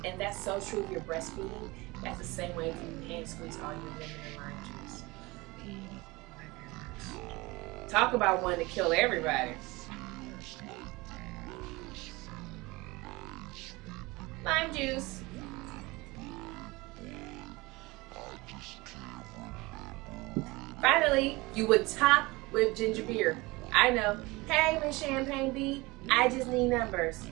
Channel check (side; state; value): left; quieter; 22.6 dB